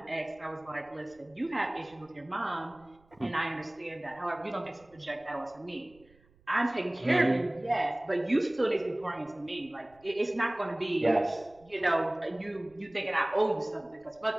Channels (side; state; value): right; noise; rumble, 30 dB below the sound